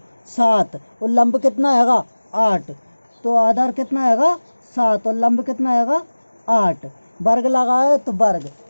7 और लंब कितना आएगा 8, तो आधार कितना आएगा 7 और लंब कितना आएगा 8, वर्ग लगा है तो वर्ग।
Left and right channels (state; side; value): inverted; both; correlation -1.00